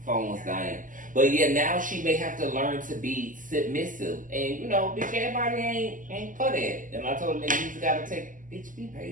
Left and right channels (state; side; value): late; left; 0.38 ms